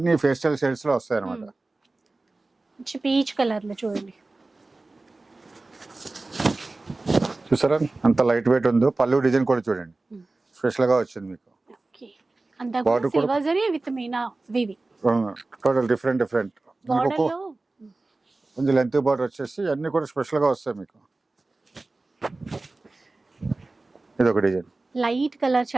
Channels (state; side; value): quieter; left; 3.3 dB